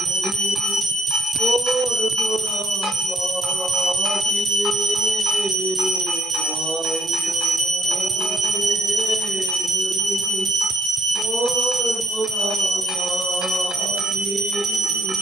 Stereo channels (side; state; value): both; normal; correlation 0.71